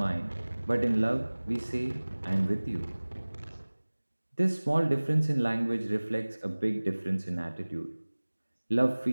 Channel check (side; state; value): both; inverted; correlation -1.00